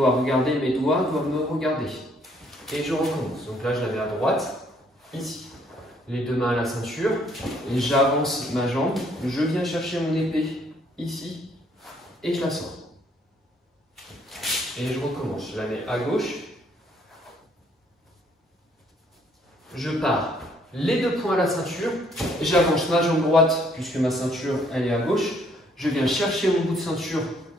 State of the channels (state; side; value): normal; both; correlation 0.66